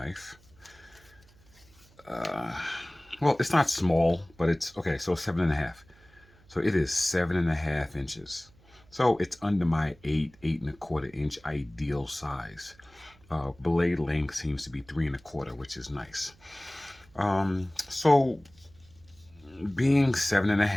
well, it's not small, but it's okay. So 7.5. So it is 7.5 inches. So it's under my 8.25 inch ideal size. Blade length seems to be 3.25, which is nice. So being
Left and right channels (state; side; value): noise; right; hum, 28 dB below the sound